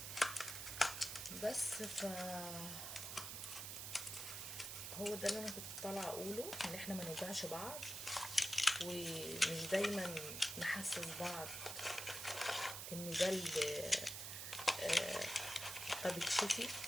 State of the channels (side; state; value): right; noise; hiss, 6 dB below the sound